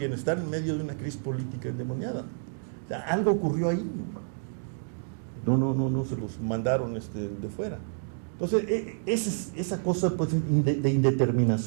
en medio de una crisis política endemoniada. O sea, algo ocurrió ahí, no se los mandaron de fuera. Entonces, esa cosa, pues, de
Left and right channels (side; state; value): left; silent; digital silence